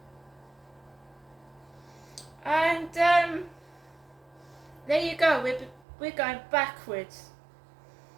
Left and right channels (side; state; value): left; drops out; at 5.8 s